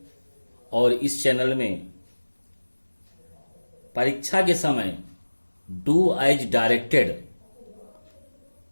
और इस चैनल में परीक्षा के समय डू एज डायरेक्टेड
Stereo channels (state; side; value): inverted; both; correlation -1.00